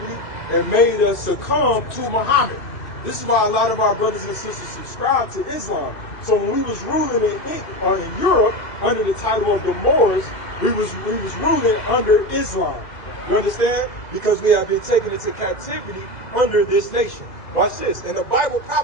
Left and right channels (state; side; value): late; right; 2.0 ms